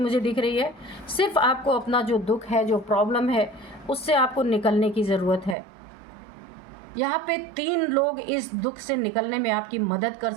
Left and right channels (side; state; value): left; drops out; at 5.6 s